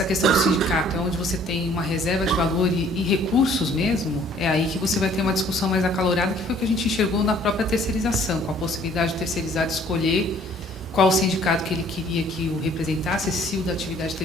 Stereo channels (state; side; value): normal; both; correlation 0.57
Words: questão do sindicato é onde você tem uma reserva de valor e recursos mesmo, é aí que você vai ter uma discussão mais acalorada, que foi o que a gente enxergou na própria terceirização, com a possibilidade de terceirizado escolher qual o sindicato que ele queria que o representasse, se o da atividade